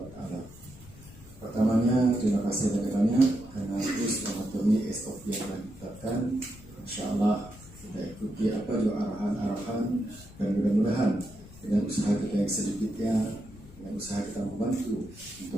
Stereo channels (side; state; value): left; noise; rumble, 19 dB below the sound